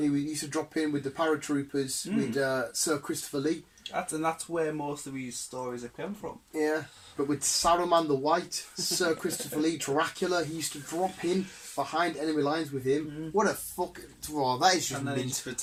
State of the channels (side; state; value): both; identical; correlation 1.00